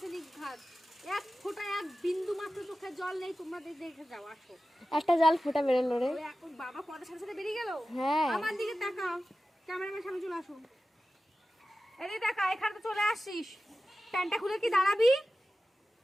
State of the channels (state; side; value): normal; both; correlation 0.94